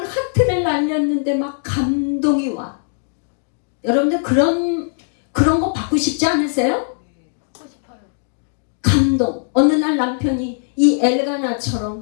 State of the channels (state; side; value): silent; right; digital silence